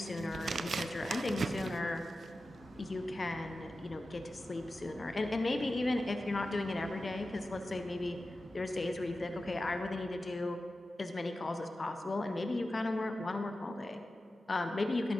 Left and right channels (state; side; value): normal; both; correlation 0.93